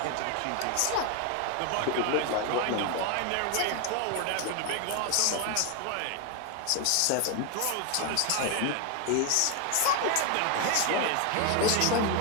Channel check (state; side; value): different; both; correlation 0.01